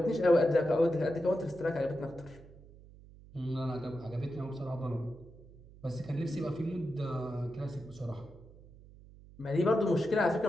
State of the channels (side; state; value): right; noise; hum, 21 dB below the sound